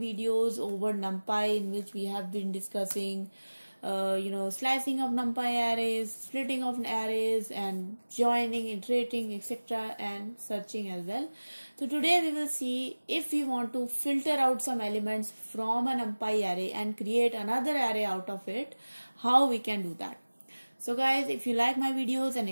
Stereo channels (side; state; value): both; inverted; correlation -1.00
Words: over NumPy in which we have been discussing slicing of NumPy arrays, splitting of arrays, and joining, iterating, etc., and searching as well. So today we will see if we want to filter out some elements from a NumPy array and create another array out of it, how we can do that. So guys, if you like my videos and